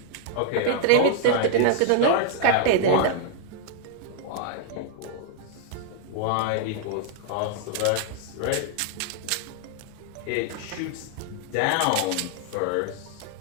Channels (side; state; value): both; different; correlation -0.01